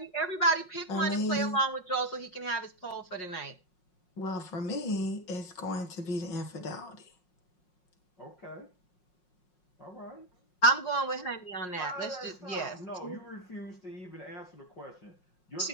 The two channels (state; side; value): late; right; 5.5 ms